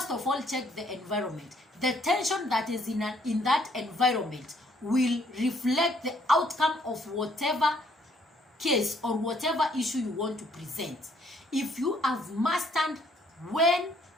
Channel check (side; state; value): both; normal; correlation 0.66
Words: of all, check the environment. The tension that is in that environment will reflect the outcome of whatever case or whatever issue you want to present. If you have mastered when